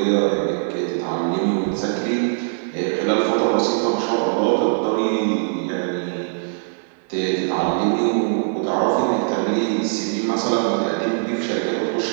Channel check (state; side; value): silent; left; digital silence